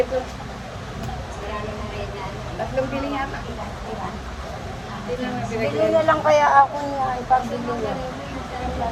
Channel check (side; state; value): both; identical; correlation 1.00